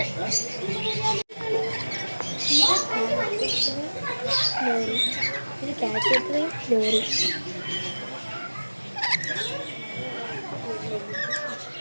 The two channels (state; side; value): inverted; both; correlation -1.00